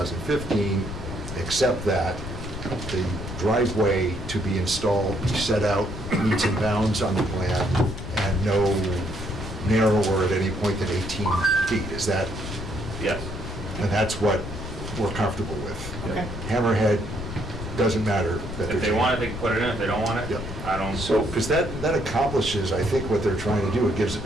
except that the driveway to be installed be set out meets and bounds on the plan and no narrower at any point than 18 feet. Is that, Yes. and that's what we're comfortable with. Okay. Hammerhead, doesn't matter that they're. If they want it, they can put it in, if they don't want it, Yep. I don't. So, Because that accomplishes, I think, what they're trying to do. It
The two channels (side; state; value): left; noise; rumble, 8 dB below the sound